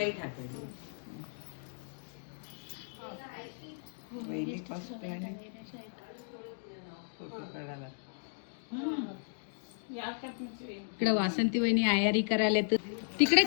हातायची इकडे वासंती वहिनी आयारी करायला तर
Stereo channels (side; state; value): right; silent; digital silence